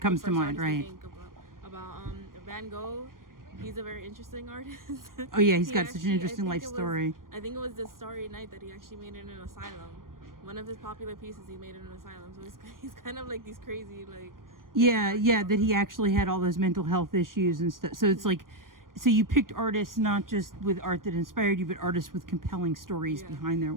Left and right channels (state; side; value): late; left; 0.91 ms